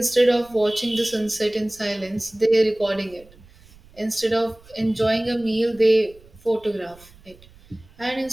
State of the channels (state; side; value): noise; right; rumble, 25 dB below the sound